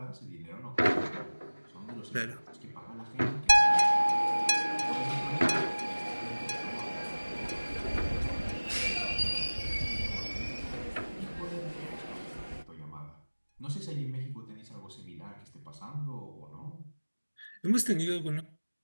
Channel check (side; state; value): both; inverted; correlation -1.00